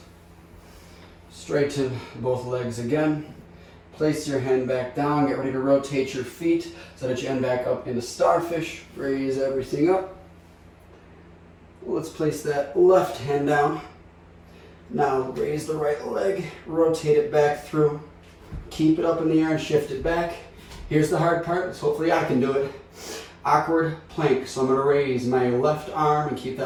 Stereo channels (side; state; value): both; identical; correlation 1.00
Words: Straighten both legs again. Place your hand back down. Get ready to rotate your feet so that you end back up into starfish. Raise everything up. Let's place that left hand down. Now raise the right leg. Rotate it back through. Keep it up in the air and shift it back. Here's the hard part. So hopefully I can do it. Awkward plank. So I'm going to raise my left arm and keep